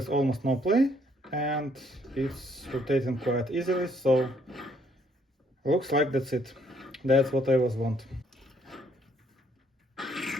almost no play and it's rotating quite easily, so looks like that's it. That's what I was want.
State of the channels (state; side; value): normal; both; correlation 0.67